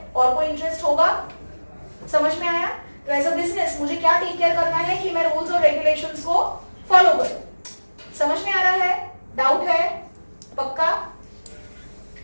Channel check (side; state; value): both; inverted; correlation -1.00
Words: और कोई इंटरेस्ट होगा? समझ में आया? तो एज अ बिजनेस मुझे क्या टेक केयर करना है कि मैं रूल्स और रेगुलेशंस को फॉलो करूं. समझ में आ रहा है? डाउट है? पक्का?